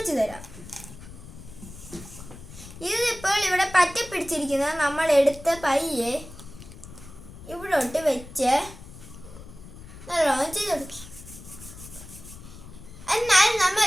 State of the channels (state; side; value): noise; left; rumble, 16 dB below the sound